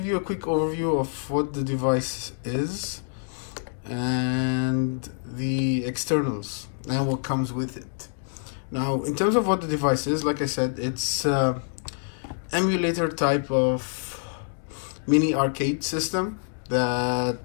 you a quick overview of what the device is and the externals and what comes with it. Now, in terms of what the device is, like I said, it's emulator type of mini arcade system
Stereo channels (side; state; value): right; silent; 61 dB below the other